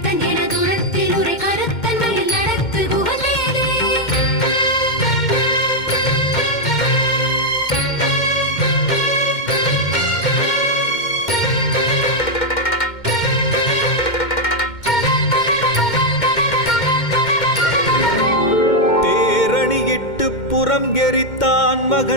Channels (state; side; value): late; right; 2.1 ms